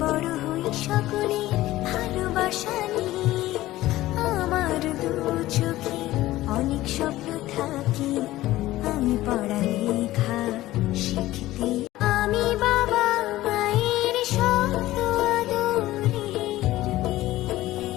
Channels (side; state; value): right; quieter; 16.2 dB